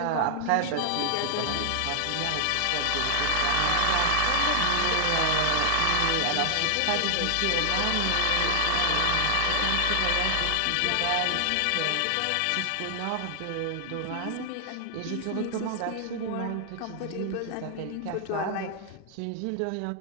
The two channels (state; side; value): different; both; correlation 0.00